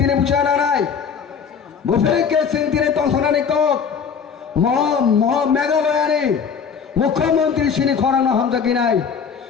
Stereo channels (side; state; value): right; quieter; 6.6 dB